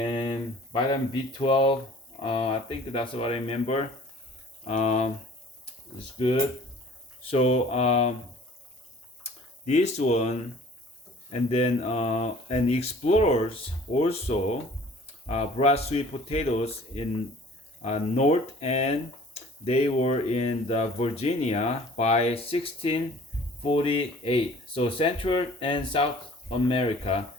vitamin B12. I think that's what I remember. Um, it's good. So this one, and then and explorers also brought sweet potatoes in north, and they were in the Virginia by 1648. So Central and South America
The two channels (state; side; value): normal; both; correlation 0.50